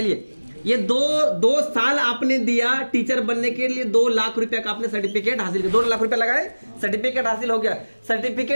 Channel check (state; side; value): inverted; both; correlation -1.00